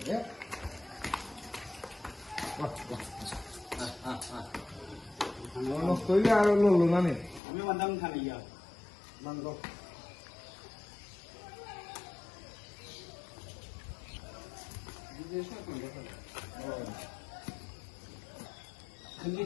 নষ্ট হইলে আর লড়লো না নে আমি বান্দাম খালি ইয়া বন্ধ खंजी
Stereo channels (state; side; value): drops out; right; at 7.4 s